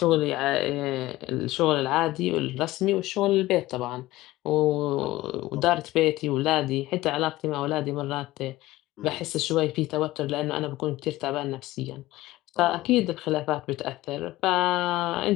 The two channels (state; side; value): quieter; right; 17.5 dB